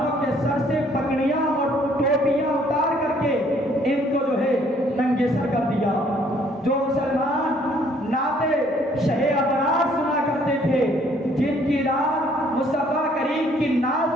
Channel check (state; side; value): normal; both; correlation 0.62